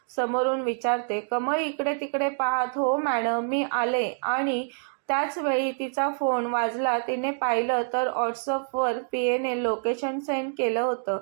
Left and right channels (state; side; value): silent; left; digital silence